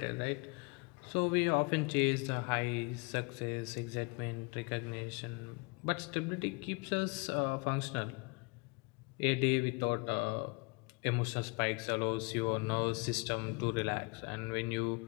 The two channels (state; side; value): quieter; right; 30.0 dB